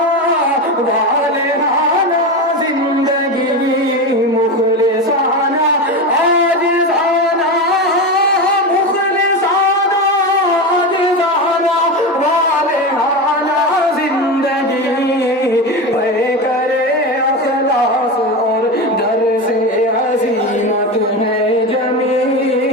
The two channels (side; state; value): both; normal; correlation 0.20